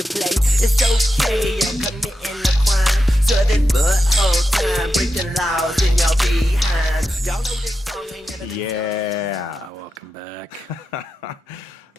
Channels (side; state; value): both; normal; correlation 0.89